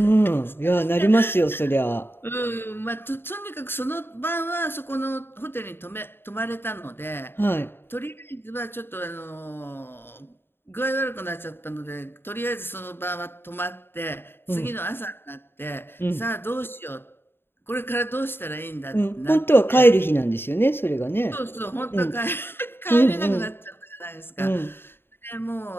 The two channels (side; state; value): right; late; 0.11 ms